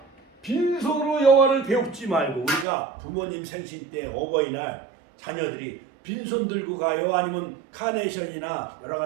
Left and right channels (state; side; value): drops out; left; at 2.7 s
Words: 빈손으로 여호와를 배웁지 말고, 우리가 부모님 생신 때 어버이날 자녀들이 빈손 들고 가요? 아니면 카네이션이나 여러